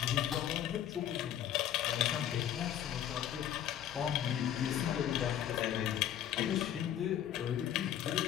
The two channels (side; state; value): right; quieter; 10.7 dB